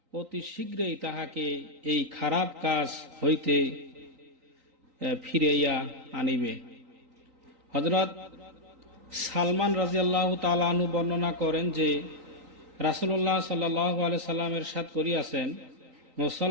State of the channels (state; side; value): late; left; 3.9 ms